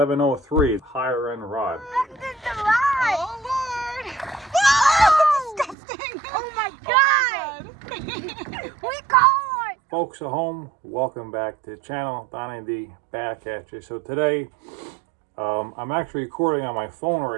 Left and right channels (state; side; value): drops out; left; at 5.8 s